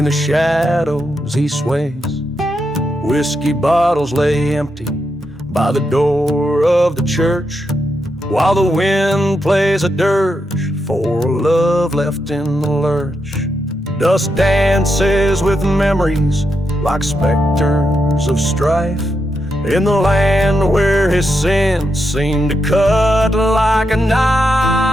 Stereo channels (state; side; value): normal; both; correlation 0.84